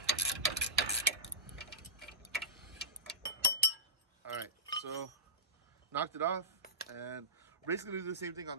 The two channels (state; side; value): normal; both; correlation -0.16